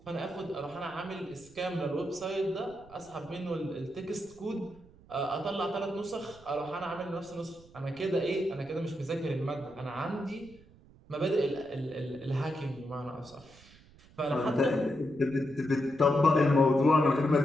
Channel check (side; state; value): right; noise; rumble, 24 dB below the sound